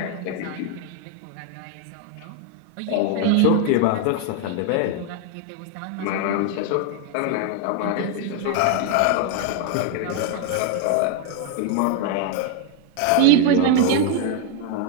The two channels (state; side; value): different; both; correlation 0.00